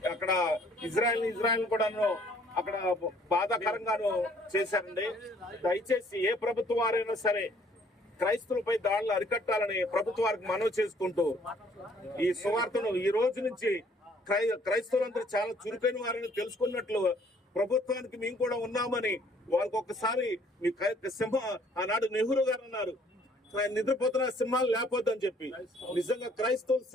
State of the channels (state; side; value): normal; both; correlation 0.61